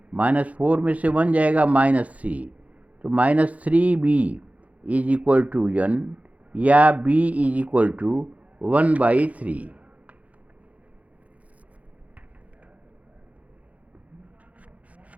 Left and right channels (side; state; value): left; late; 0.068 ms